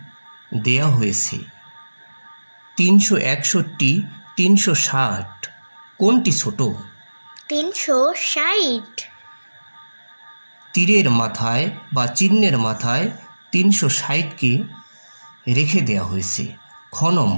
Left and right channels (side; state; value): both; inverted; correlation -1.00